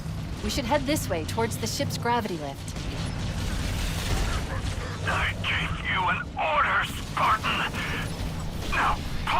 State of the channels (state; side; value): identical; both; correlation 1.00